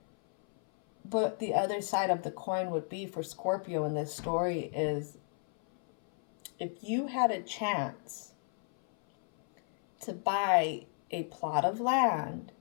But the other side of the coin would be for Scorpio in this story is, if you had a chance to buy a plot of land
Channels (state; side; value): silent; right; 56 dB below the other